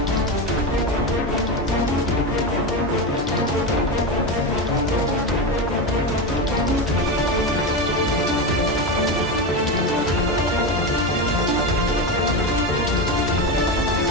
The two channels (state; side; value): normal; both; correlation 0.17